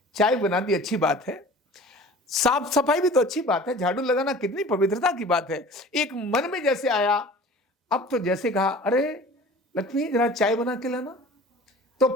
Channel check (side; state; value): both; normal; correlation 0.43